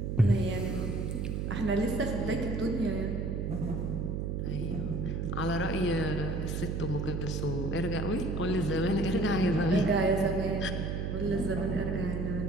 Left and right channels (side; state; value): right; noise; hum, 1 dB below the sound